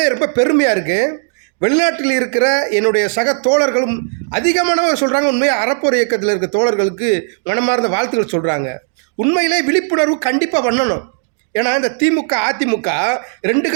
ரொம்ப பெருமையாக இருக்குது. வெளிநாட்டில் இருக்கிற என்னுடைய சக தோழர்களும் அதிகமானவர் சொல்கிறாங்க, உண்மையாக அறப்போர் இயக்கத்தில் இருக்க தோழர்களுக்கு மனமார்ந்த வாழ்த்துக்கள் சொல்கிறாங்க. உண்மையிலே விழிப்புணர்வு கண்டிப்பாக பண்ணணும். ஏன்னா இந்த திமுக அதிமுக ரெண்டு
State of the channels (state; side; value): silent; left; digital silence